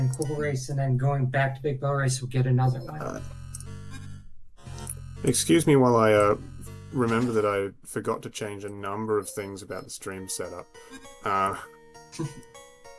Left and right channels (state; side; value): identical; both; correlation 1.00